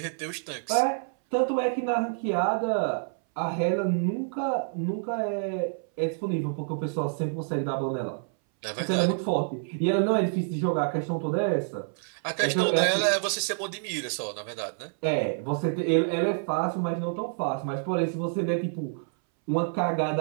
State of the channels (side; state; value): left; silent; 60 dB below the other